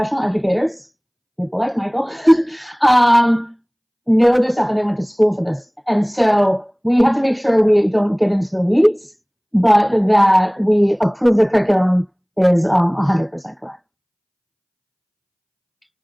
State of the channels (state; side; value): identical; both; correlation 1.00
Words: educators, people like Michael, know their stuff and they went to school for this. And so we have to make sure we don't get into the weeds, but that we approve the curriculum is 100% correct.